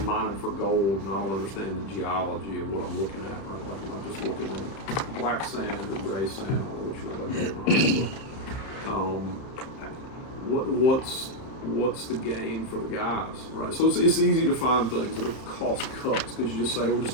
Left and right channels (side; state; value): right; late; 31 ms